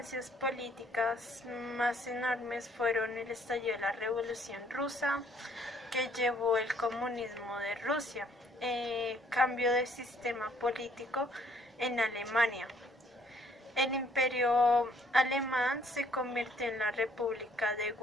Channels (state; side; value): normal; both; correlation 0.63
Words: políticas más enormes fueron el estallido de la Revolución Rusa, que llevó el comunismo de Rusia, cambio de sistema político en Alemania. El imperio alemán se convirtió en la República de